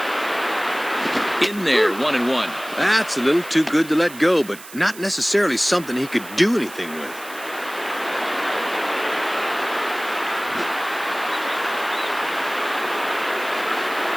In there, 1-1. That's a little too good to let go, but not necessarily something he could do anything with.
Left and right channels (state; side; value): noise; right; hiss, 16 dB below the sound